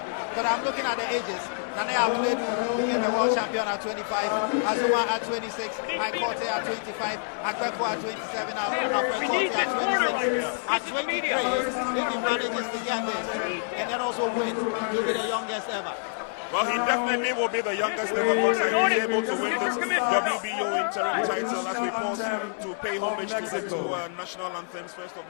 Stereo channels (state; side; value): silent; right; 60 dB below the other